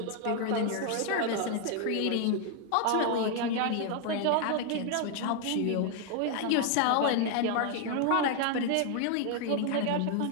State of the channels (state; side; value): different; both; correlation 0.00